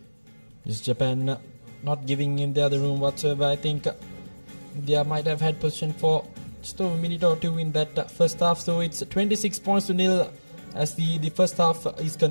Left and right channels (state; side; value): inverted; both; correlation -1.00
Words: Is Japan not giving in the other room whatsoever? I think India might have had possession for just over a minute or two in that first half. So it's 26 points to nil as the first half is